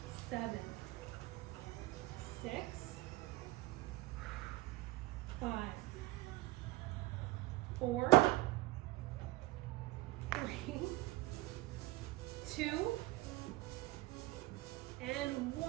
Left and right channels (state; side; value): quieter; left; 18.3 dB